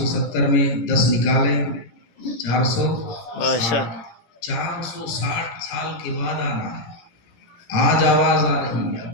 میں 10 نکالے، 460 سال کے بعد آنا ہے۔ آج آواز آ رہی ہے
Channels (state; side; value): late; right; 18 ms